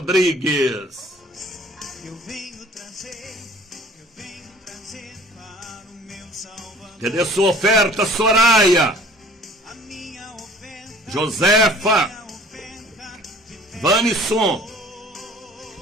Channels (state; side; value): normal; both; correlation 0.49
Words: Eu venho trazer para o meu Salvador. Cadê sua oferta, Soraya? A minha oferta, Josefa, minha oferta de fé. Vanisson,